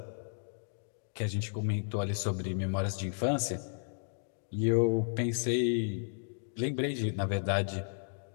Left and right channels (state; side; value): silent; right; digital silence